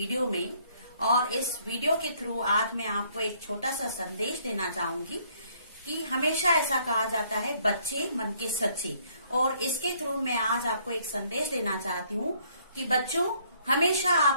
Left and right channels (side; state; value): both; inverted; correlation -0.65